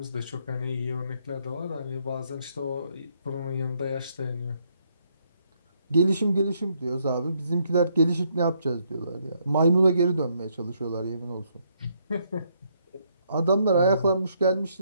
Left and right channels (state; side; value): inverted; both; correlation -0.73